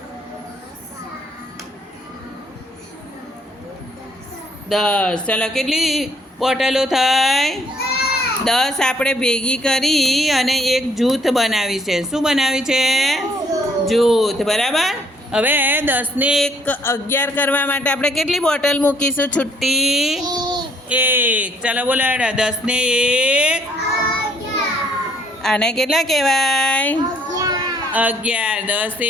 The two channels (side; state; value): both; normal; correlation 0.65